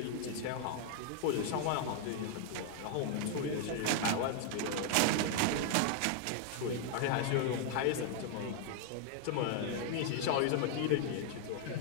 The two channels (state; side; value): different; both; correlation 0.00